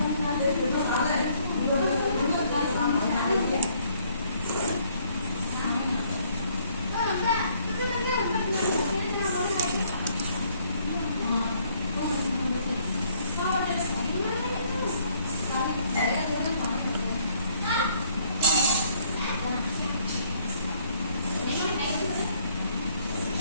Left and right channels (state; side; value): inverted; both; correlation -0.64